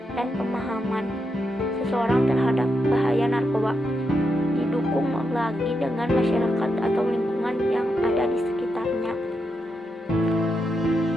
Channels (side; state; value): both; normal; correlation 0.84